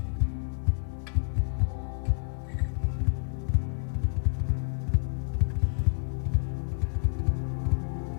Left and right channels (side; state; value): right; silent; digital silence